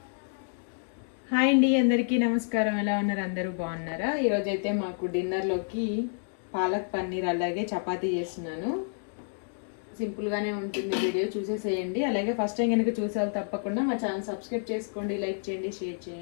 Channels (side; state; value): right; silent; digital silence